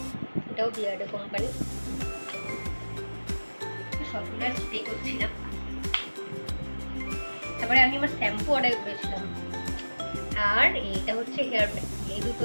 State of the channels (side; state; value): both; inverted; correlation -1.00